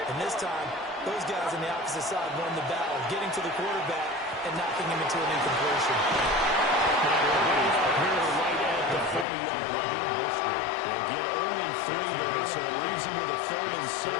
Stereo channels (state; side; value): drops out; right; at 9.2 s